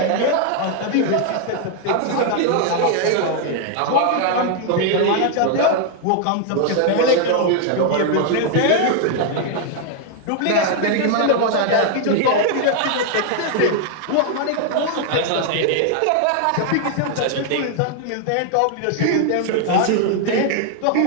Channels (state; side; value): different; both; correlation 0.00